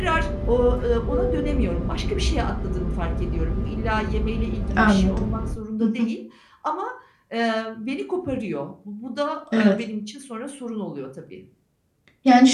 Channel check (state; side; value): identical; both; correlation 1.00